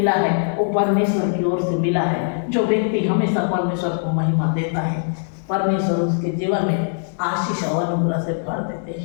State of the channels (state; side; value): silent; right; digital silence